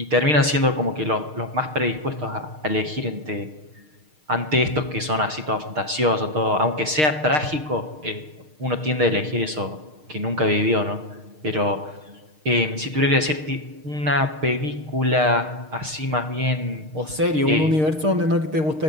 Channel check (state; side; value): late; left; 6.5 ms